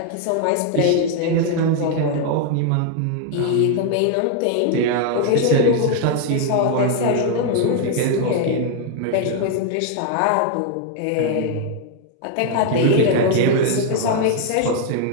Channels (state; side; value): different; both; correlation 0.00